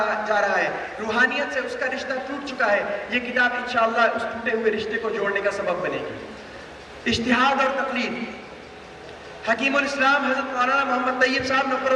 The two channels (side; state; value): both; identical; correlation 1.00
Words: جا رہا ہے، روحانیت سے اس کا رشتہ ٹوٹ چکا ہے، یہ کتاب انشاءاللہ اس ٹوٹے ہوئے رشتے کو جوڑنے کا سبب بنے گی۔ اجتہاد اور تقلید، حکیم الاسلام حضرت مولانا محمد طیب صاحب نفر